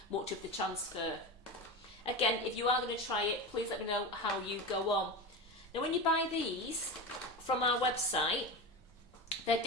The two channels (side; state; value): both; normal; correlation 0.24